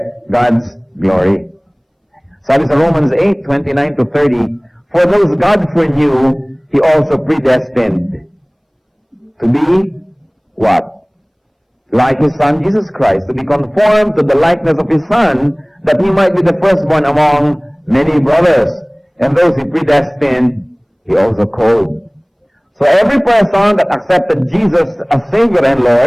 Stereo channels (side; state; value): both; identical; correlation 1.00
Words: God's glory. Sabi sa Romans 8:29 to 30, for those God foreknew, He also predestined to be what? Like His Son, Jesus Christ, to be conformed to the likeness of His Son, that He might be the firstborn among many brothers. And those He predestined, He also called. So every person that accepted Jesus as Savior and